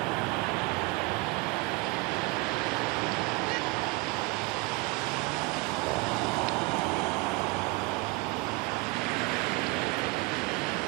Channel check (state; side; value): quieter; left; 25.9 dB